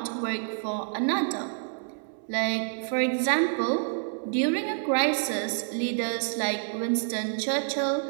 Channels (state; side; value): silent; left; 59 dB below the other